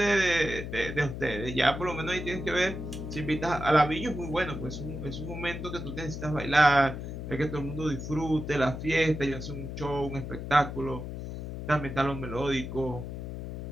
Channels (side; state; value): left; noise; hum, 7 dB below the sound